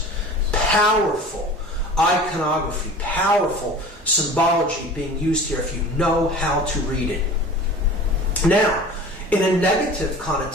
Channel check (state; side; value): normal; both; correlation 0.40